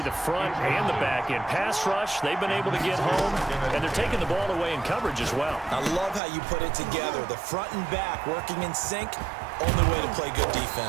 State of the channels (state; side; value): drops out; left; at 6.2 s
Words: the front and the back end. Pass rush, they've been able to get home, and they're taking the ball away in coverage as well. I love how you put it together. The front and back working in sync, only way to play good